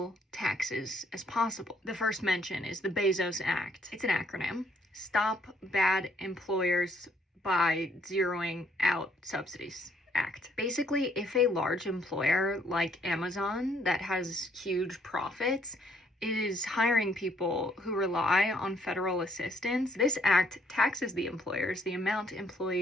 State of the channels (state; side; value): normal; both; correlation 0.67